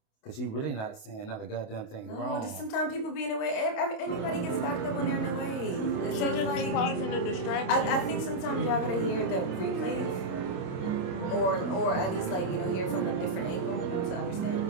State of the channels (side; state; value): right; late; 28 ms